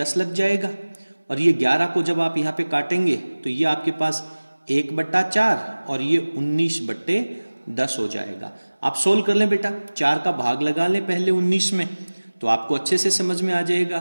लग जाएगा, और ये 11 को जब आप यहाँ पे काटेंगे तो ये आपके पास 1/4 और ये 19/10 हो जाएगा। आप सोल्व कर लें बेटा, 4 का भाग लगा लें पहले 19 में, तो आपको अच्छे से समझ में आ जाएगा।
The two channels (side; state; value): both; inverted; correlation -1.00